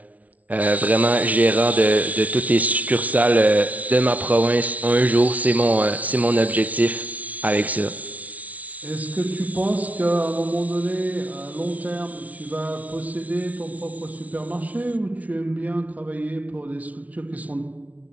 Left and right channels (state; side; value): late; left; 0.070 ms